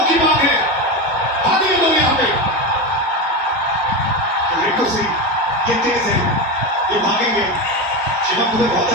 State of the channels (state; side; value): normal; both; correlation 0.18